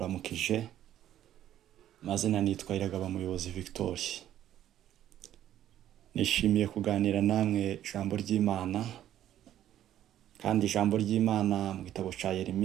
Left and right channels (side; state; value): left; quieter; 11.7 dB